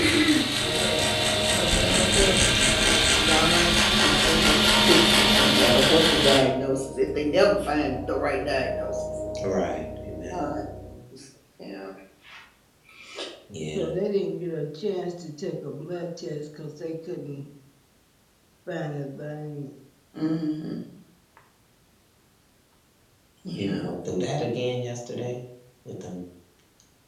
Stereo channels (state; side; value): identical; both; correlation 1.00